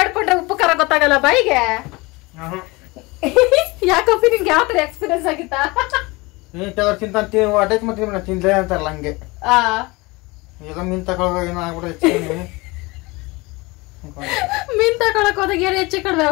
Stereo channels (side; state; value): right; quieter; 23.9 dB